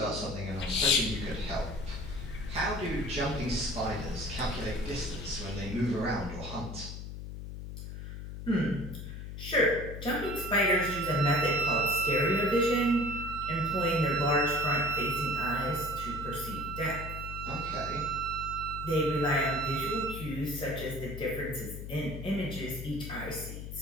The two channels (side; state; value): left; noise; hum, 8 dB below the sound